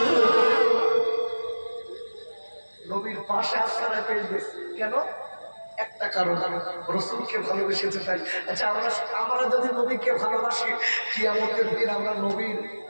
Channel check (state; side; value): inverted; both; correlation -1.00